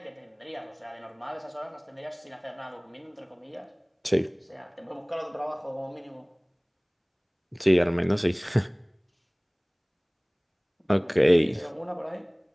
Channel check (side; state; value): both; identical; correlation 1.00